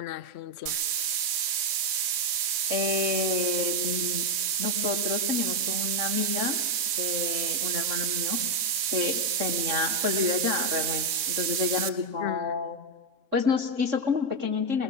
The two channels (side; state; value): left; late; 3.6 ms